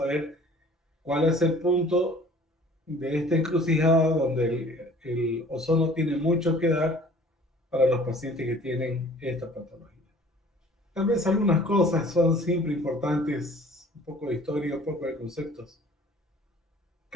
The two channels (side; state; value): both; normal; correlation 0.50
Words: cuál es el punto de esta encrucijada donde el ozono tiene mucho que dar para los pacientes que tienen esta patología. Tal vez algunas cosas son siempre importantes, un poco de historia, un poco de conceptos.